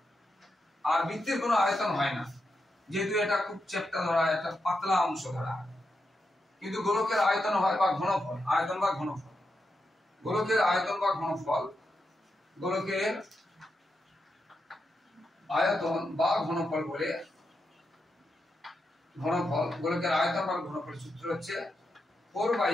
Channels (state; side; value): normal; both; correlation 0.86